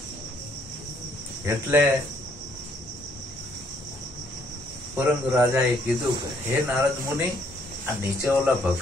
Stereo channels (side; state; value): both; normal; correlation 0.67